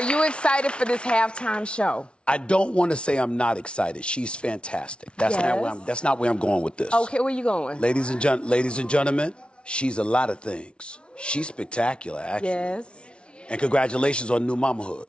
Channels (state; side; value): late; right; 0.058 ms